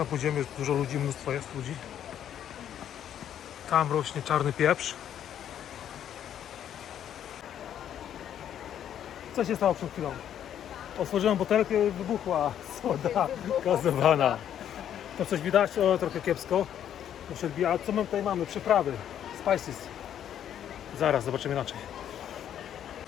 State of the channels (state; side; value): quieter; right; 10.0 dB